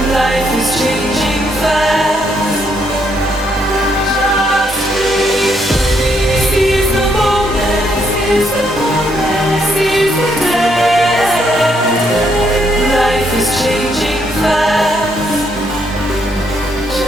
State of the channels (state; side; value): normal; both; correlation 0.74